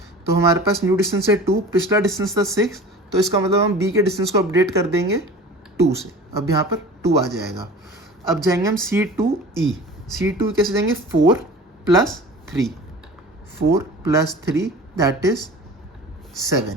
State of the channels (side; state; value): both; normal; correlation 0.39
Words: तो हमारे पास न्यू डिस्टेंस है 2, पिछला डिस्टेंस था 6, तो इसका मतलब हम B के डिस्टेंस को अपडेट कर देंगे 2 से, अब यहाँ पर 2 आ जाएगा। अब जाएंगे हम C to E, C to कैसे जाएंगे, 4 + 3 दैट इज 7।